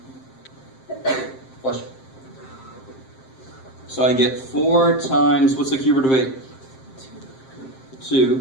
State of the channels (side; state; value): right; late; 7.6 ms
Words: Bless you. So I get 4 times, what's the cube root of 8?